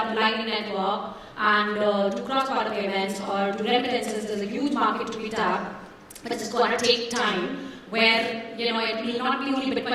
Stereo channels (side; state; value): both; identical; correlation 1.00